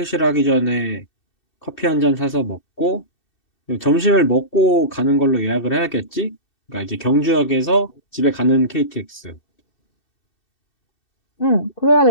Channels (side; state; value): right; late; 2.7 ms